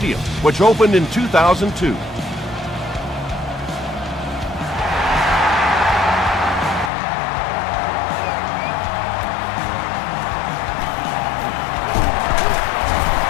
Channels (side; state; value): right; drops out; at 6.9 s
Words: which opened in 2002.